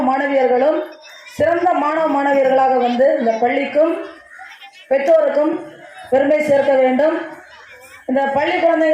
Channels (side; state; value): both; identical; correlation 1.00